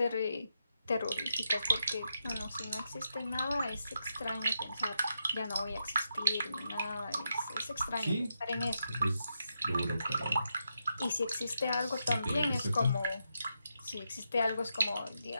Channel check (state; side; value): inverted; both; correlation -0.84